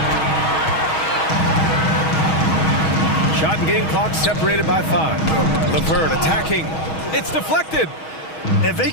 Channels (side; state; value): right; late; 6.3 ms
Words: Shot and game clock separated by 5. LeVert attacking. It's deflected. And they